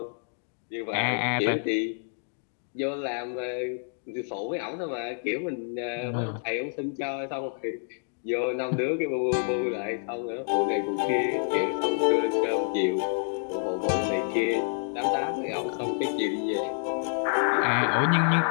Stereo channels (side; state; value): right; silent; digital silence